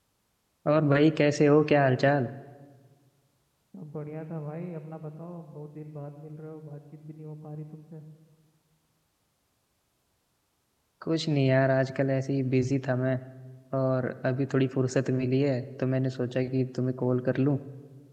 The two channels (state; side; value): identical; both; correlation 1.00